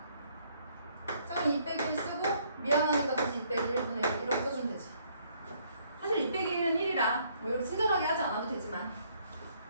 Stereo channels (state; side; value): inverted; both; correlation -0.66